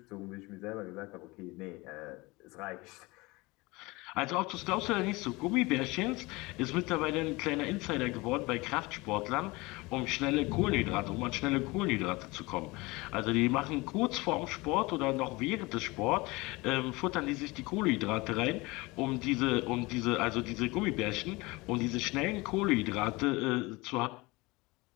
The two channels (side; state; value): right; quieter; 23.3 dB